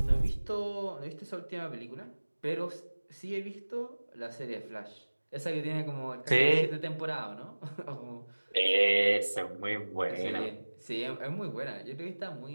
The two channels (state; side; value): inverted; both; correlation -1.00